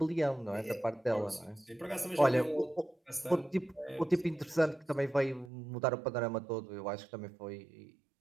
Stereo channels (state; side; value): drops out; left; at 5.5 s